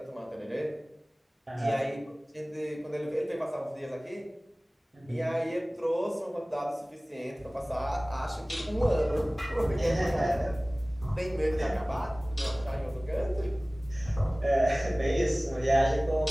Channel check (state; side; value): normal; both; correlation 0.98